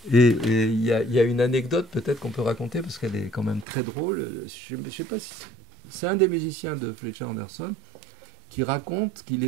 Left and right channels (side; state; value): left; drops out; at 3.7 s